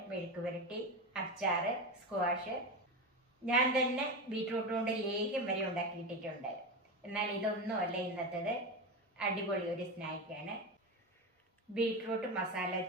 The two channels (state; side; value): normal; both; correlation 0.19